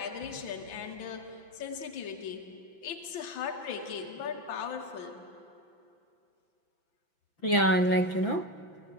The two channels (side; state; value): right; late; 5.9 ms